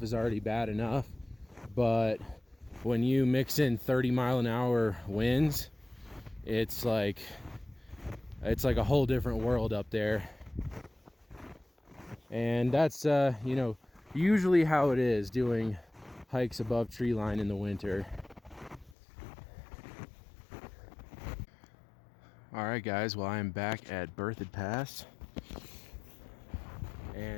is already bad enough, but when you mix in 30-mile-an-hour winds, it's like a whole different world up there. And that's you know, usually how it is doing hikes above tree line in the winter. All right, guys, well, I am back at Berthoud Pass,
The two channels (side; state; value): right; drops out; at 18.9 s